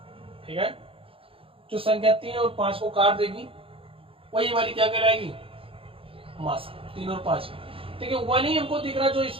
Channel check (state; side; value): late; left; 0.27 ms